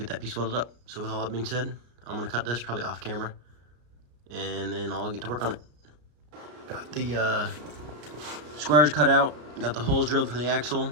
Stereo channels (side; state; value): left; late; 33 ms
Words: that piece welded up. So with all that being said, I'm gonna cut this probably off camera and then I'll get to work on it. Got the squares cut out, got the holes drilled for the axle.